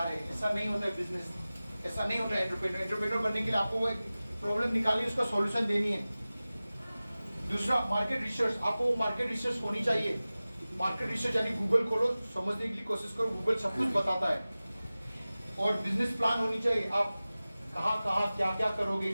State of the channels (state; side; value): inverted; both; correlation -0.97